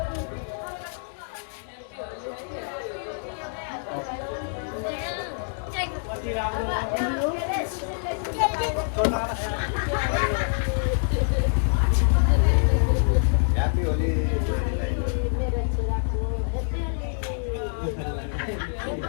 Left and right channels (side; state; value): right; silent; digital silence